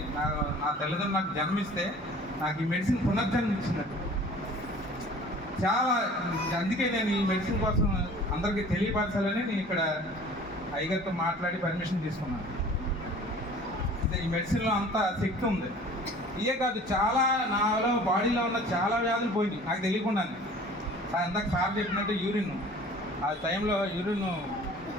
నా తల్లిదండ్రులు నాకు జన్మిస్తే నాకు ఈ మెడిసిన్ పునర్జన్మ ఇచ్చినట్టు చాలా. అందుకే నేను ఈ మెడిసిన్ కోసం అందరికీ తెలియపరచాలని నేను ఇక్కడ అయ్యగారితో మాట్లాడి పర్మిషన్ తీసుకున్నాను. ఈ మెడిసిన్లో అంత శక్తి ఉంది. ఇవే కాదు, చాలా నాలో బాడీలో ఉన్న చాలా వ్యాధులు పోయినాయి నాకు తెలియకుండానే. ఇందాక సార్ చెప్పినట్టు యూరిన్, ఆ టైంలో యూరిన్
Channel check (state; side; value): normal; both; correlation 0.47